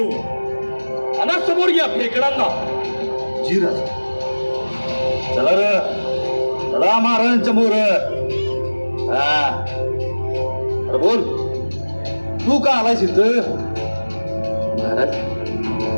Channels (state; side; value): inverted; both; correlation -1.00